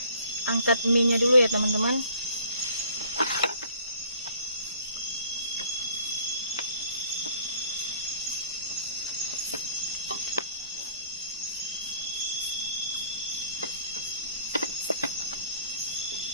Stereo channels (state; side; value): inverted; both; correlation -0.57